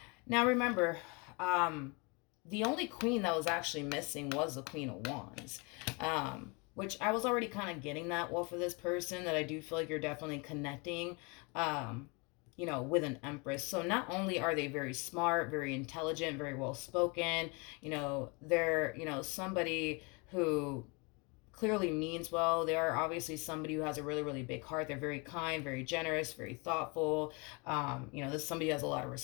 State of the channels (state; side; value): quieter; right; 30.3 dB